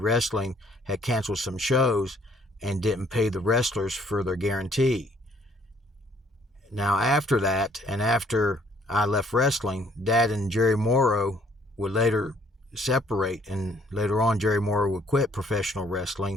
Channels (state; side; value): normal; both; correlation 0.62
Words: had canceled some shows and didn't pay the wrestlers for their guarantee. Now, after that, and after I left wrestling, Dad and Jerry Morrow would later separate, and later on Jerry Morrow would quit professional